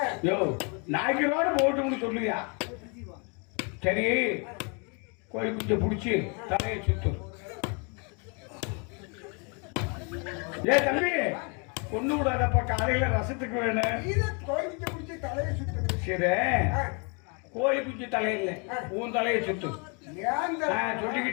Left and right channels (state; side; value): quieter; right; 34.9 dB